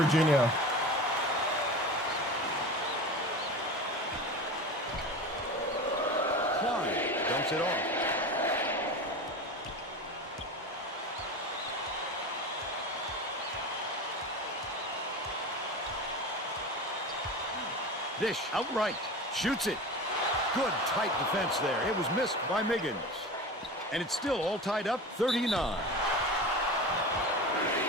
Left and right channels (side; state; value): both; normal; correlation 0.30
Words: Klein dumps it off. Dish outright. Shoots it. Good tight defense there. It was missed by Miggins. And it's still all tied up, 39.